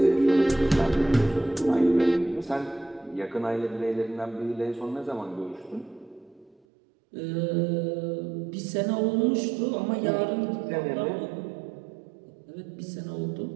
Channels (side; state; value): left; drops out; at 6.6 s